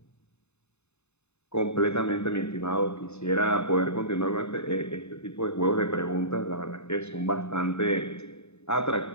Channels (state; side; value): late; right; 0.81 ms